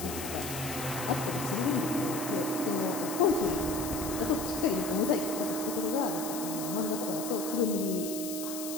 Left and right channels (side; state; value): left; noise; hiss, 8 dB below the sound